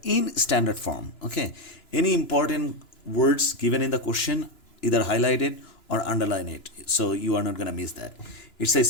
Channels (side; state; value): right; late; 2.9 ms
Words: in standard form. Okay, any important words given in the question, either highlight it or underline it, so you are not going to miss that. It